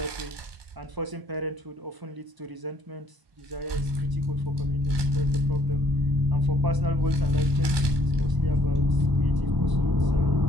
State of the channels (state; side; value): late; left; 1.2 ms